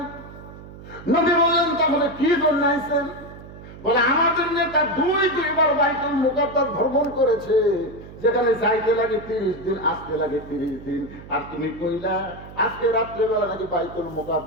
নবী বললেন তাহলে কি জন্য আইছেন? বলে আমাদের নেতা দুইবার বাইতুল মুকাদ্দাস ভ্রমণ করেছে, যেখানে যাইতে লাগে 30 দিন, আসতে লাগে 30 দিন। আর তুমি কইলা আজকে রাত্রেবেলা নাকি বাইতুল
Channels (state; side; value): noise; right; hum, 16 dB below the sound